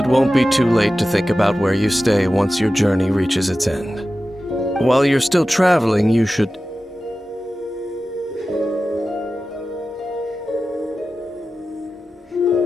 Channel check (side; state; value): both; normal; correlation 0.94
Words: won't be too late to think about where you stay once your journey reaches its end. While you're still traveling, you should...